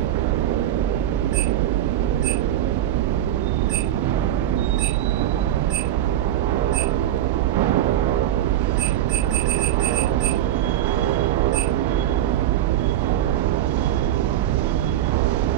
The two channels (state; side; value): quieter; left; 12.4 dB